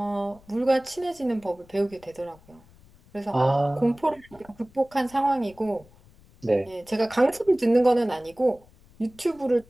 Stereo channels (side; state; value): left; noise; rumble, 27 dB below the sound